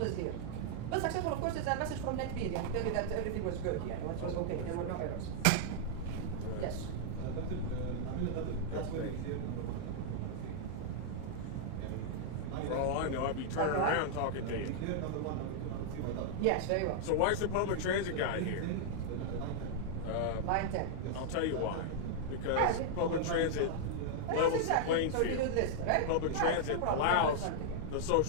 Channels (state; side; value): different; both; correlation -0.01